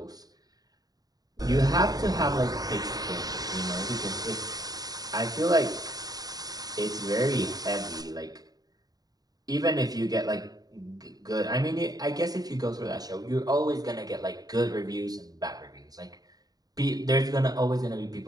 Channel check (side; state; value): left; late; 0.18 ms